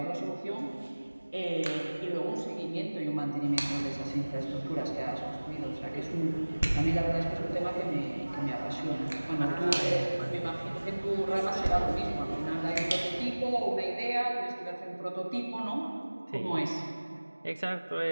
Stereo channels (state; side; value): inverted; both; correlation -1.00